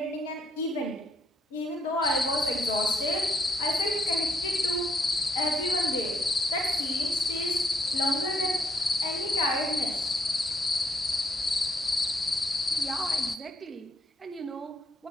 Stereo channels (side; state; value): both; normal; correlation 0.72